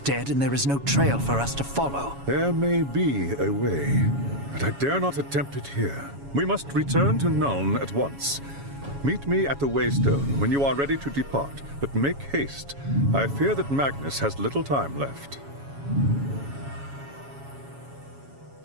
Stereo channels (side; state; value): left; late; 7.2 ms